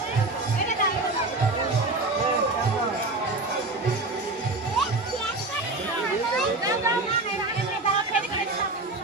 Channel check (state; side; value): quieter; left; 3.1 dB